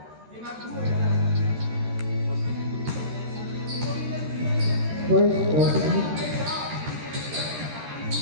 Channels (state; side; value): late; left; 13 ms